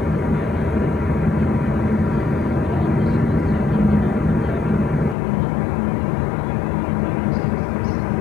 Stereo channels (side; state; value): right; drops out; at 5.2 s